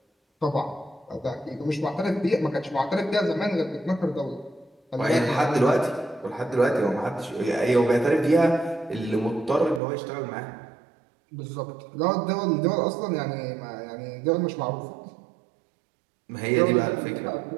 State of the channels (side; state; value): left; drops out; at 9.8 s